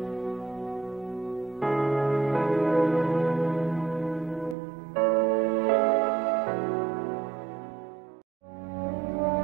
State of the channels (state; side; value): drops out; left; at 4.5 s